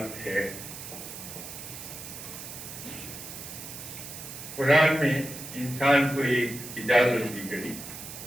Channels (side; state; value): right; noise; hiss, 11 dB below the sound